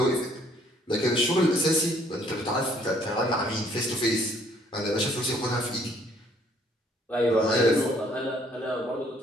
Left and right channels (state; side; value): normal; both; correlation 0.63